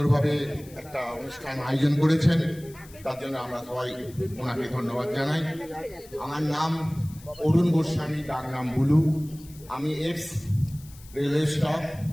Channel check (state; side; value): noise; left; hiss, 22 dB below the sound